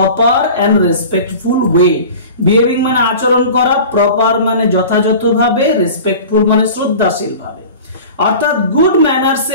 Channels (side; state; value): both; inverted; correlation -0.38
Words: and respectful way. Behaving মানে আচরণ করা, প্রপার মানে যথাযথভাবে, রেসপেক্টফুল মানে শ্রদ্ধাশীল ভাবে। অর্থাৎ গুড ম্যানার্স